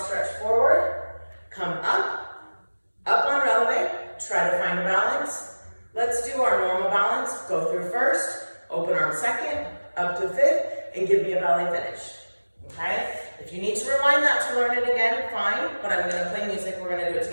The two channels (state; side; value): inverted; both; correlation -1.00